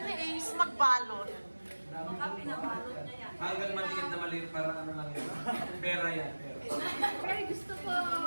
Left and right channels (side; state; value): both; inverted; correlation -1.00